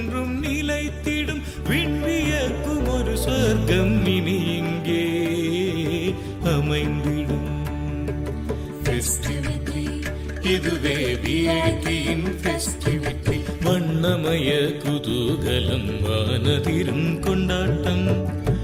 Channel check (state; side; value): identical; both; correlation 1.00